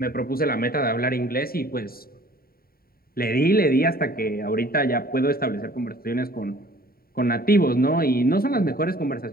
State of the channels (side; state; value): right; late; 0.43 ms